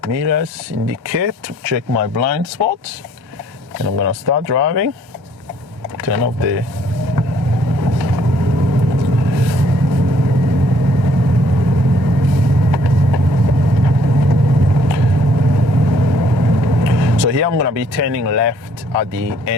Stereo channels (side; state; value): left; late; 1.3 ms